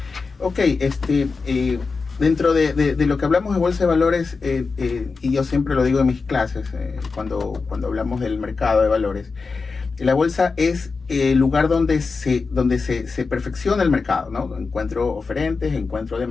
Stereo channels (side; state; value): right; quieter; 4.5 dB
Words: Dentro de lo que hablamos de bolsa de valores, y yo siempre lo digo en mis clases, cuando hablamos del mercado de valores, la bolsa es el lugar donde se perfecciona el mercado, ¿no? Encuentro oferentes, encuentro